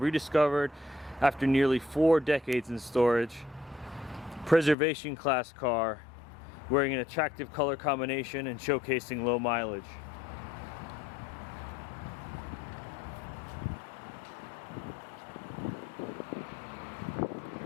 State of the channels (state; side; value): drops out; right; at 4.8 s